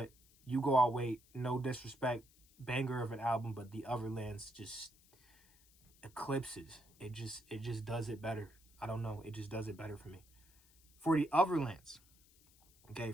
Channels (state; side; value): noise; left; hiss, 28 dB below the sound